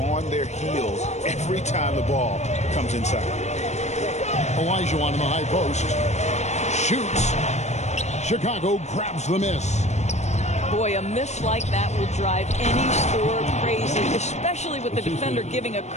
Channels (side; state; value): right; late; 0.33 ms